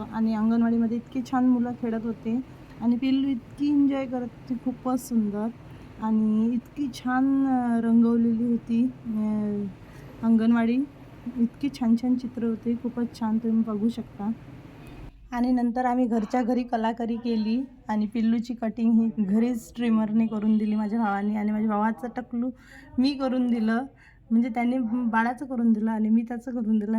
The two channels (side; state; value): both; identical; correlation 1.00